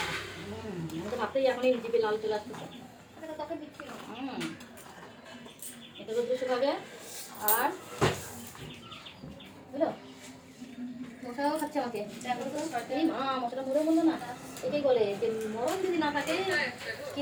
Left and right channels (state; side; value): identical; both; correlation 1.00